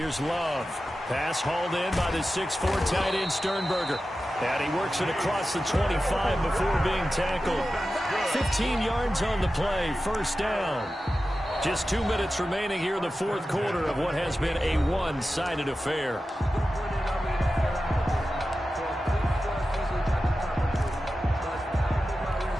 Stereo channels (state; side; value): normal; both; correlation 0.93